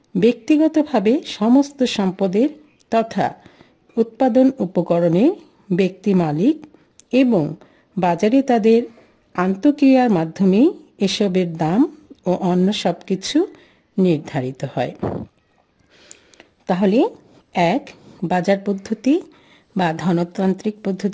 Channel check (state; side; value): identical; both; correlation 1.00